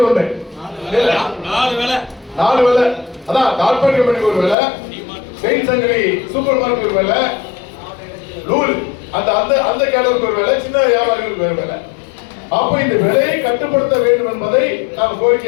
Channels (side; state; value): right; drops out; at 4.5 s